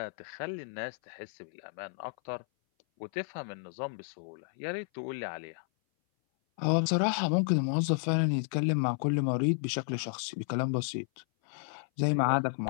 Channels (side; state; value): right; silent; 56 dB below the other